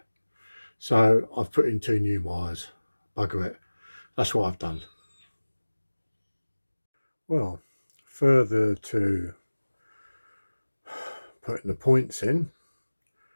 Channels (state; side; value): inverted; both; correlation -1.00